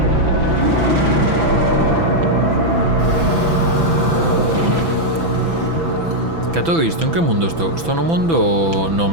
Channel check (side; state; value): left; late; 6.0 ms